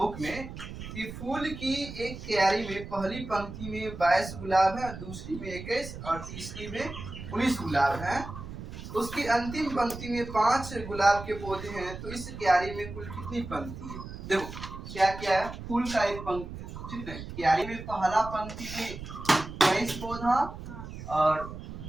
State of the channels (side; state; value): right; noise; rumble, 10 dB below the sound